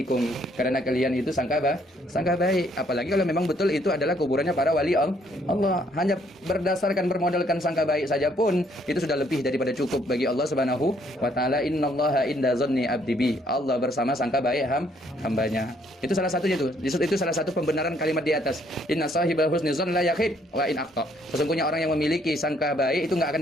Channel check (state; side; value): normal; both; correlation 0.67